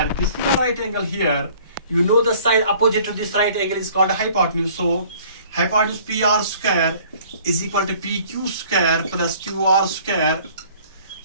this is the right angle here. You know the side opposite to this right angle is called hypotenuse. So hypotenuse PR square is equal to PQ square plus QR square.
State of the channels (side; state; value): both; inverted; correlation -0.53